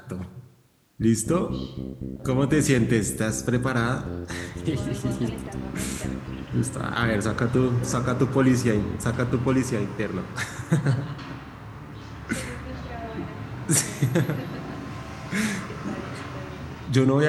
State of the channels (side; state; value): both; identical; correlation 1.00